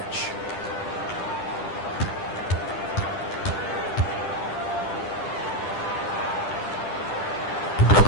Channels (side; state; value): right; late; 10 ms